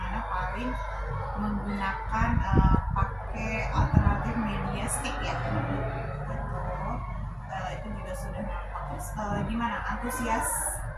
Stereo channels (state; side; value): identical; both; correlation 1.00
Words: paling menggunakan pakai alternatif media stick ya. Itu juga sudah bagus. Gimana antusias